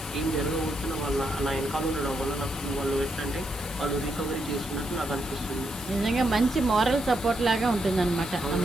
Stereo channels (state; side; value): normal; both; correlation 0.80